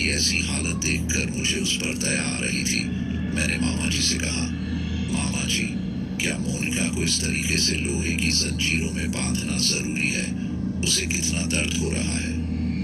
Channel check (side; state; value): both; identical; correlation 1.00